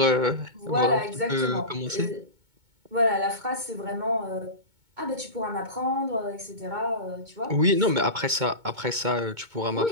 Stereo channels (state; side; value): late; left; 2.2 ms